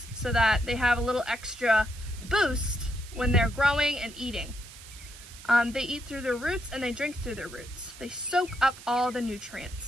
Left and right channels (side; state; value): right; noise; hiss, 17 dB below the sound